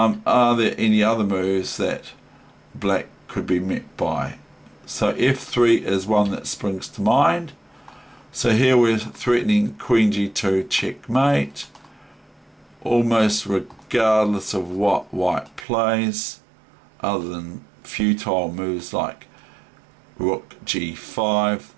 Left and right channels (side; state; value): left; drops out; at 15.7 s